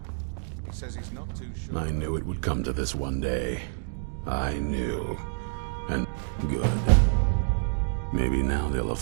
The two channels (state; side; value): silent; left; digital silence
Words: He says he's not too sure. I knew it would come to this one day. I knew. And good. Maybe now they'll